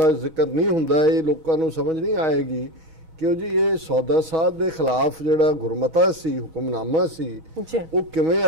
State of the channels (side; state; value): left; late; 4.0 ms